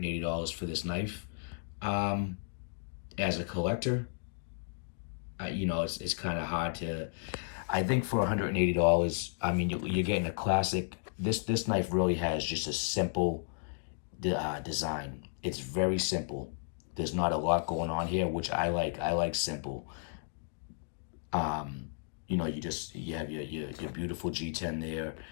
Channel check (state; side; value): silent; right; digital silence